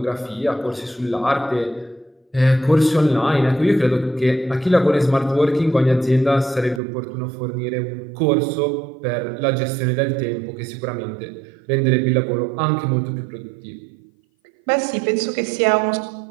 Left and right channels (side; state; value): left; drops out; at 6.8 s